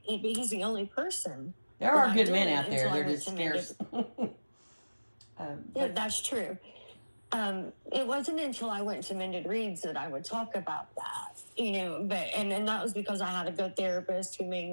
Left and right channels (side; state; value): both; inverted; correlation -1.00